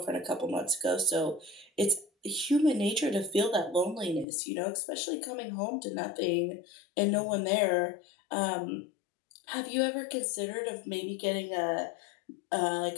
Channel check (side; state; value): right; drops out; at 4.2 s